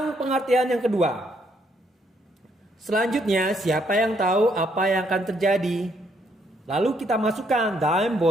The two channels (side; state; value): both; normal; correlation 0.71